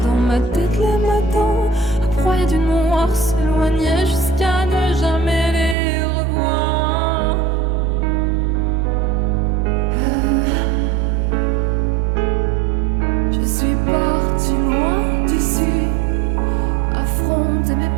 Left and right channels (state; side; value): drops out; left; at 5.8 s